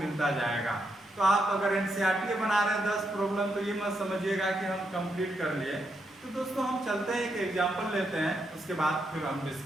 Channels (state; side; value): normal; both; correlation 0.80